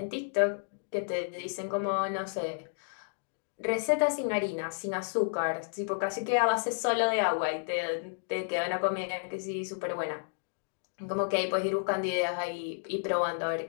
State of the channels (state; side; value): silent; right; digital silence